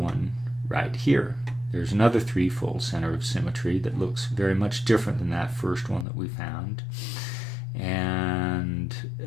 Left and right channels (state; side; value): drops out; right; at 6.1 s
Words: right here. There's another threefold center of symmetry that looks very much different than that first one that we found. And